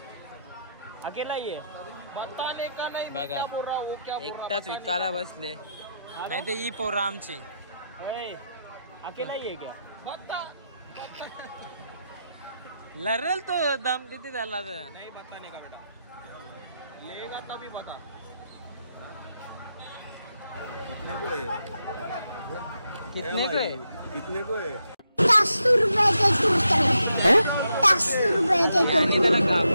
अकेला ही है. बताने का नहीं. बघा क्या बोल रहा वो, क्या बोल रहा एकटाच विकायला बसले. नाही ते ही पोरं आमची. अकेला ही है क्या? बता लरल तो दम किती झाला तर. नहीं बताने का बेटा, लेगा तभी बता. कितने को है? कितने को है? 10 रुपए के है 10 रुपए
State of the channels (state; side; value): inverted; both; correlation -0.82